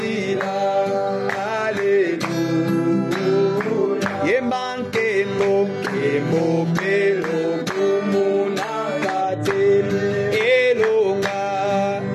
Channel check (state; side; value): identical; both; correlation 1.00